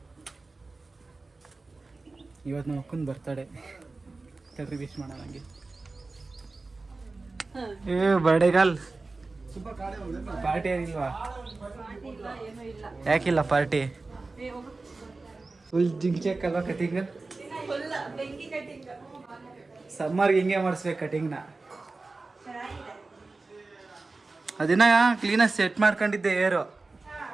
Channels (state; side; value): quieter; left; 3.6 dB